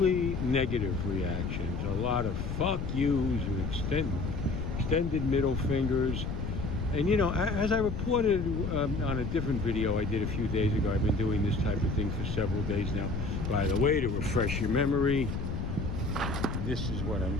negative reactions, a lot of fuck yous and extended middle fingers. And you know, as I reported on a different video I did a few days ago, I've been doing this type of thing for several days now. By the way, to refresh your memory, this is what I'm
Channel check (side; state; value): left; noise; rumble, 3 dB below the sound